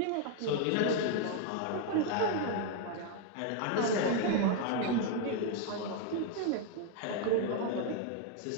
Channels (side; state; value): both; different; correlation 0.00